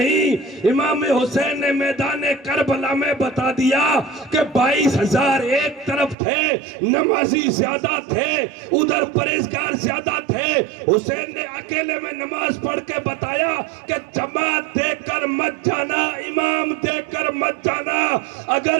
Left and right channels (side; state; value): left; drops out; at 6.2 s